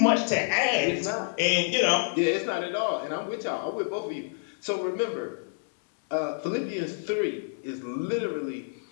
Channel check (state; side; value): silent; right; 59 dB below the other